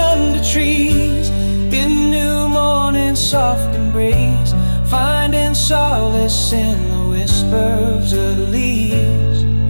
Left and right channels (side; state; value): both; inverted; correlation -1.00